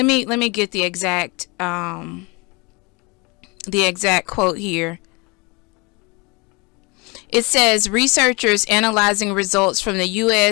me get the exact quote here. It says researchers analyzing results from the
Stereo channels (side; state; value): right; quieter; 28.0 dB